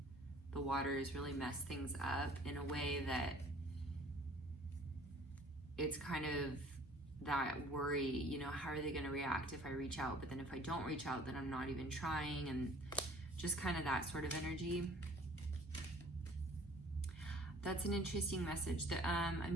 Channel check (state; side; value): normal; both; correlation 0.52